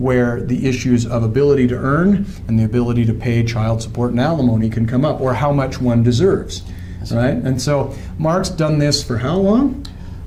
the issues of ability to earn and the ability to pay child support and alimony can come up, or how much one deserves, right? And so Mark's done this for how long?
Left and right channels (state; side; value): identical; both; correlation 1.00